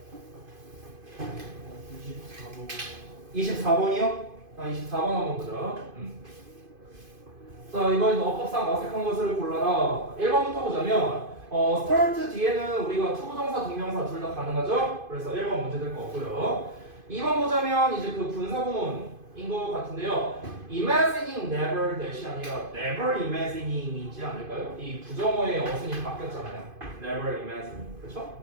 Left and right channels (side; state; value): left; late; 2.5 ms